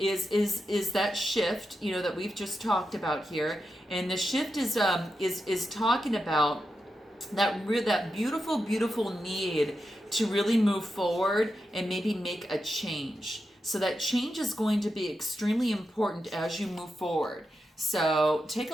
that shift, that we've just talked about here, and the shift is talking about that beautiful need to really move forward and maybe make a change. So that change is going to be extremely important as you move forward. So take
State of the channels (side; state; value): both; normal; correlation 0.88